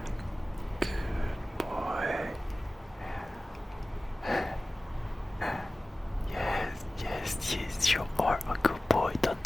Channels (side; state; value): both; normal; correlation 0.97